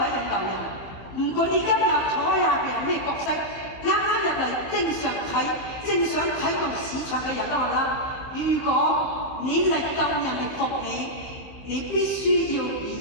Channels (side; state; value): right; late; 15 ms